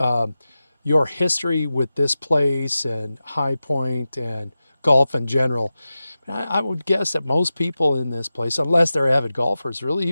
your history with this place and High Point and golf in general. I would guess that most people in this place, unless they're avid golfers, really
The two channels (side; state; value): both; inverted; correlation -0.94